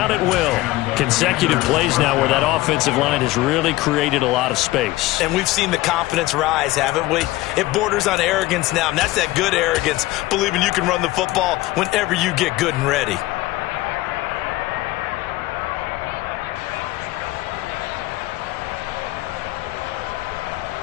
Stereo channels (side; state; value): right; quieter; 18.1 dB